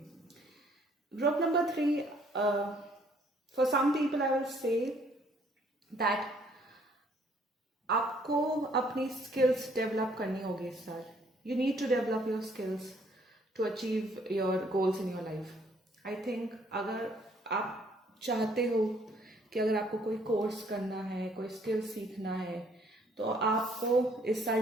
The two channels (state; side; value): normal; both; correlation 0.63